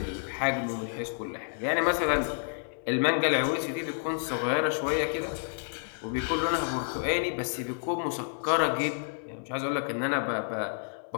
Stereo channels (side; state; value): right; silent; 58 dB below the other